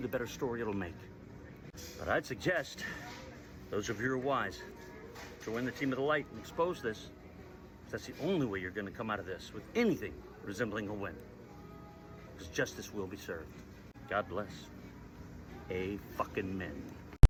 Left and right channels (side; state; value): both; identical; correlation 1.00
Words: better story it'll make. But I'd suggest those of you who are wise join the team of the light and expose this. That's the only way you're going to come out of this with anything resembling a win. Because justice will be served. God bless. A fucking men.